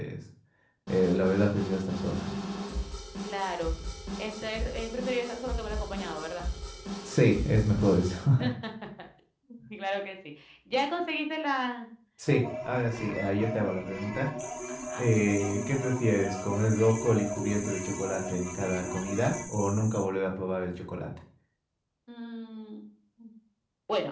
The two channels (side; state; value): both; identical; correlation 1.00